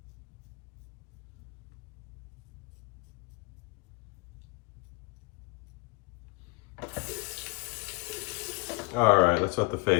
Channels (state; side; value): quieter; right; 27.9 dB